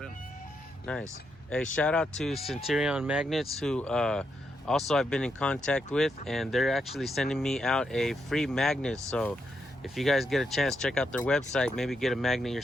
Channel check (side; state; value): both; normal; correlation 0.81